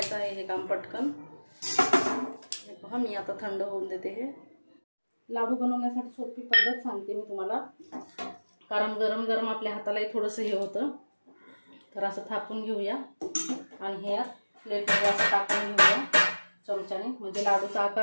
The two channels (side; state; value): both; inverted; correlation -1.00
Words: आहे हे काम पटकन. हे पहा मी आता थंड होऊन देते. हे लाडू बनवण्यासाठी सोपी पद्धत सांगते मी तुम्हाला, कारण गरम गरम आपल्या हातालाही थोडंसं हे होतं. तर असं थापून घेऊया आणि हे प्लेटमध्ये असं टाकून घेऊया चमच्याने, म्हणजे लाडूचा